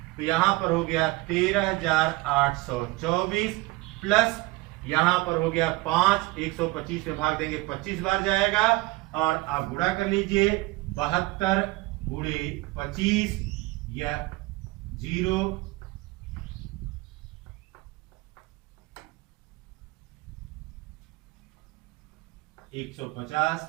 तो यहां पर हो गया 13,824 प्लस यहां पर हो गया 5, 125 में भाग देंगे 25 बार जाएगा, और आप गुणा कर लीजिए 72 गुणे 25, यह 0 150,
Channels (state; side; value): quieter; left; 21.8 dB